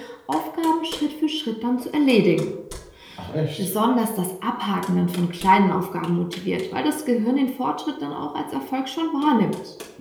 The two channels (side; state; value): both; identical; correlation 1.00